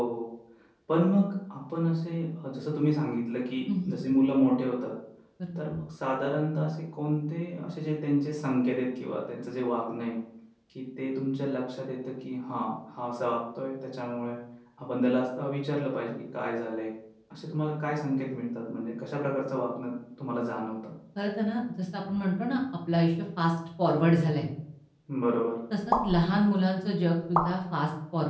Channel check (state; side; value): identical; both; correlation 1.00